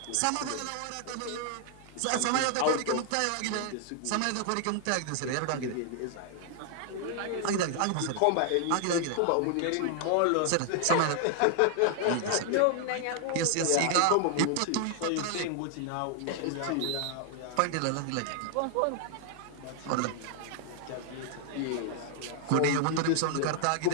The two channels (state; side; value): different; both; correlation 0.00